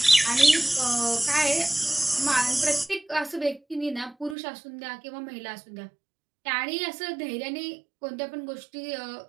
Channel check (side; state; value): left; drops out; at 4.4 s